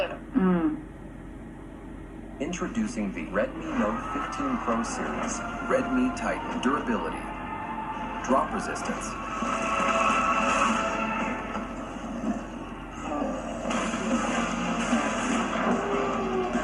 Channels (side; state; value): both; identical; correlation 1.00